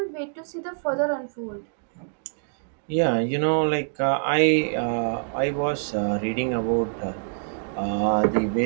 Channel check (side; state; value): left; silent; digital silence